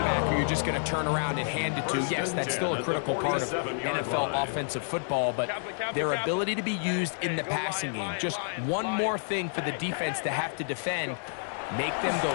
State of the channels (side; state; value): right; silent; digital silence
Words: back who you're just going to turn around and hand it to, yes, that's still a critical part of NFL offensive football, but their ability to be used in the passing game, just one more thing for the defense to have to defend, make them